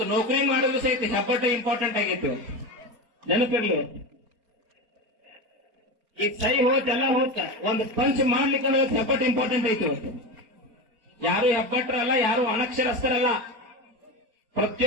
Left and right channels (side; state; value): left; late; 4.3 ms